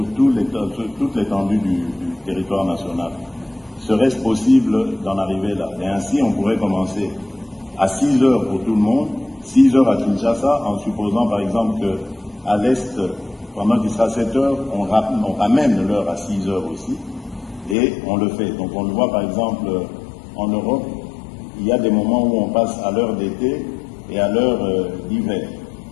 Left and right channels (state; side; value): drops out; right; at 17.8 s